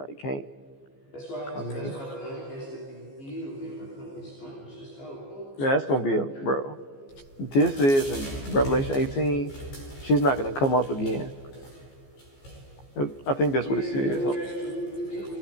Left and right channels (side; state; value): right; late; 15 ms